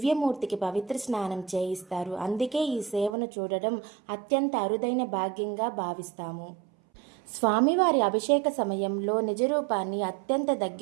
పవిత్ర స్నానం చేయిస్తారు. అందుకే ఈ సేవను చూడడం అత్యంత అరుదైన భాగ్యంగా భావిస్తాము. స్వామివారి అభిషేక సమయంలో నిజరూపాన్ని అత్యంత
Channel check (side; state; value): left; drops out; at 3.1 s